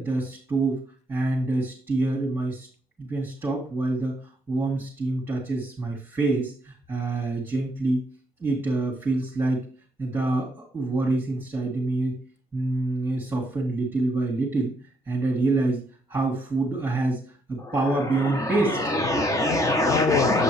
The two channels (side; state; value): both; normal; correlation 0.72